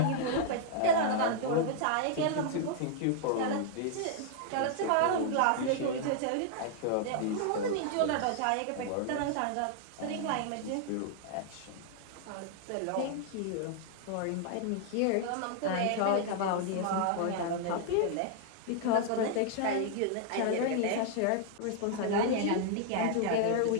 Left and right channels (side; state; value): both; different; correlation -0.01